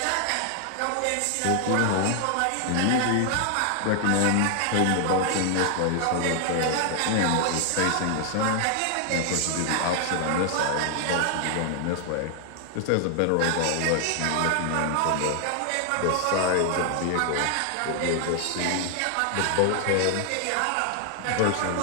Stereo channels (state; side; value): different; both; correlation 0.00